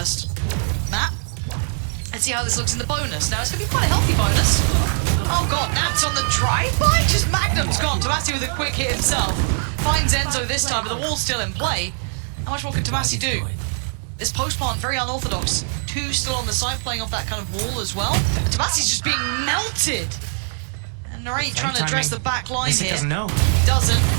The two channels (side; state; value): left; silent; 58 dB below the other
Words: map. Let's see how this looks in the bonus. Now, it's going to be quite a healthy bonus. Oh god, Nat's on the drive-by? Just Magnum's gone. Tomasi with a quick hit himself. Finds Enzo this time, but the wall's still in play. How much more can Tomasi do? This post-plant, very unorthodox. Two still on the side, playing off that kind of wall as well. And Tomasi's just being melted. And Narrate trying to address the back line here. He doesn't know. He doesn't,